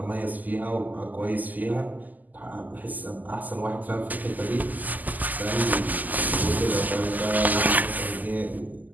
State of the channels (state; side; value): late; left; 0.082 ms